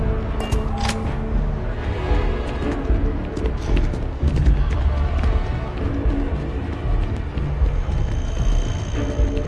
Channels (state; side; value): identical; both; correlation 1.00